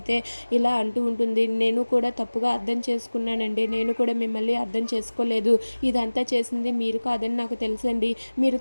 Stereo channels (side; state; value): both; inverted; correlation -1.00